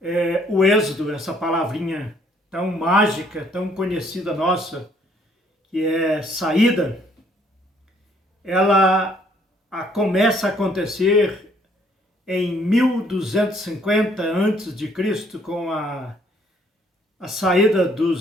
O Êxodo, essa palavrinha tão mágica, tão conhecida nossa, que é saída, ela começa a acontecer em 1250 a.C., com a saída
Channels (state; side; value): normal; both; correlation 0.64